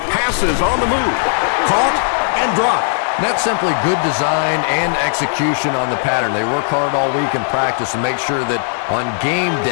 Passes on the move. Caught and dropped. That's simply good design and execution on the pattern. They work hard all week in practice to make sure that on game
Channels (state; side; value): silent; right; 55 dB below the other